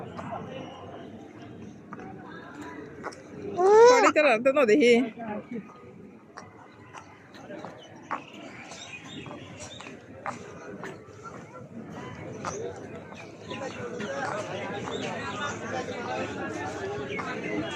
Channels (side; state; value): both; identical; correlation 1.00